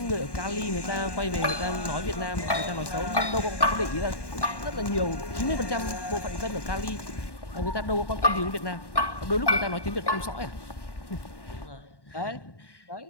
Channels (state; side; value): late; right; 1.1 ms